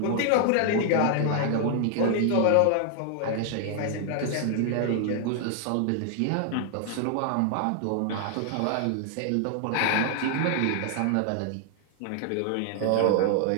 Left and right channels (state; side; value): different; both; correlation 0.00